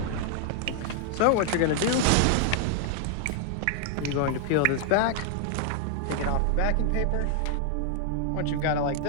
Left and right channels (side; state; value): both; different; correlation 0.00